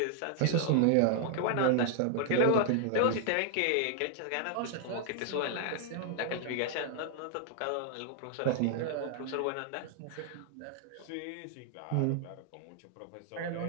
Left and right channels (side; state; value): both; different; correlation 0.00